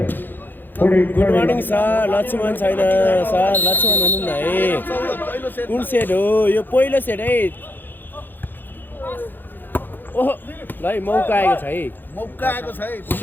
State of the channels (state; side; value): late; right; 0.092 ms